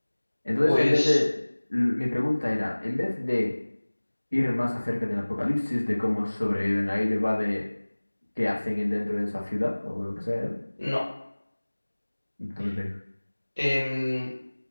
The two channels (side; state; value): both; inverted; correlation -1.00